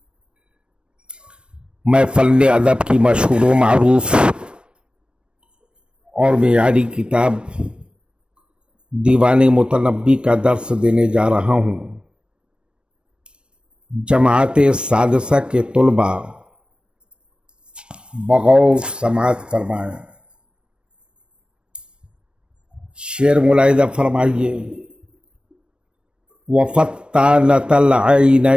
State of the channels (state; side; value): late; left; 0.056 ms